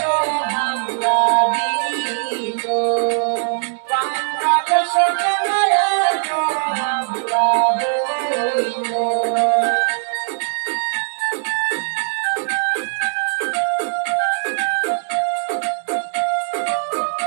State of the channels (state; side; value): silent; left; 66 dB below the other